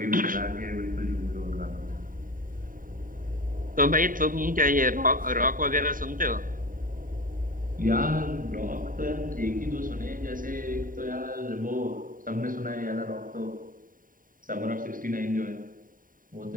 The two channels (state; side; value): late; left; 0.40 ms